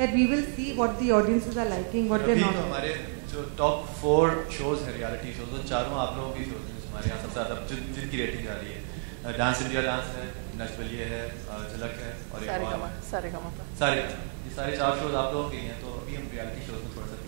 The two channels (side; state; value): left; silent; 58 dB below the other